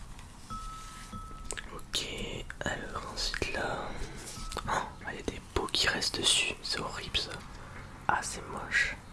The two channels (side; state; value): both; identical; correlation 1.00